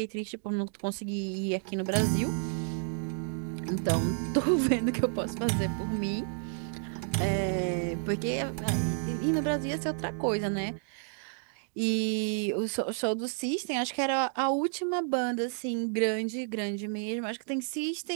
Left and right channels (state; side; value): silent; left; 57 dB below the other